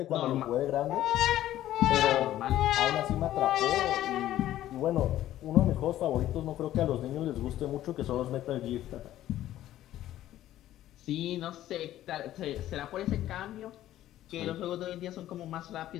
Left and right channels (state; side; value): quieter; right; 13.4 dB